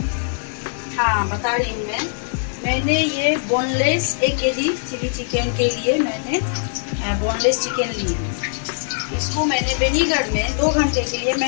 हाँ बता रही हूँ मैंने ये बोनलेस 1 केजी चिली चिकन के लिए मैंने बोनलेस चिकन ली है. इसको मैंने विनेगर में 2 घंटे के लिए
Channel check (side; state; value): right; silent; 62 dB below the other